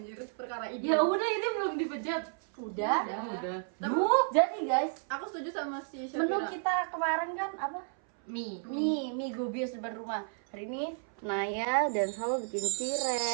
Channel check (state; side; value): silent; left; 56 dB below the other